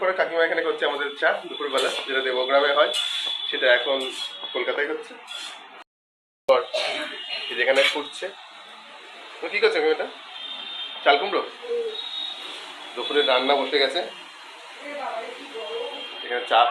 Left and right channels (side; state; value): both; identical; correlation 1.00